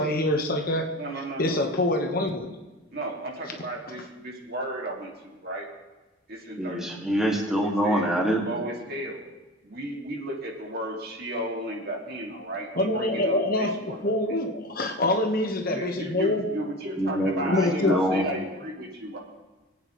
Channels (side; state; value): both; normal; correlation 0.33